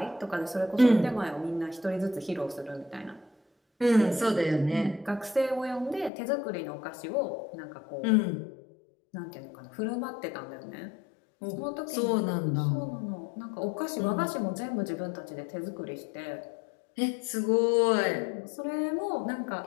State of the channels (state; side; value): drops out; right; at 6.1 s